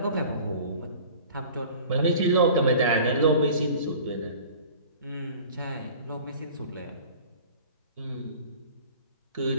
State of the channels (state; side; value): inverted; both; correlation -0.44